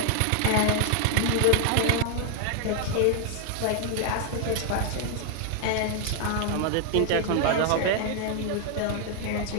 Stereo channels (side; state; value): both; different; correlation 0.00